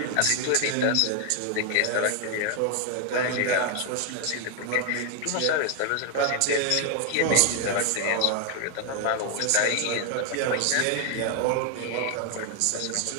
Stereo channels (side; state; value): both; different; correlation 0.00